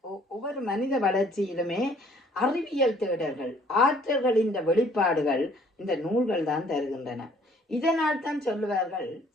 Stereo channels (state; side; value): normal; both; correlation 0.59